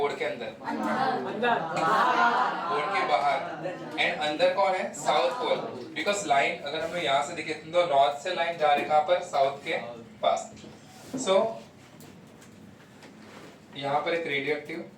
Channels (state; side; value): identical; both; correlation 1.00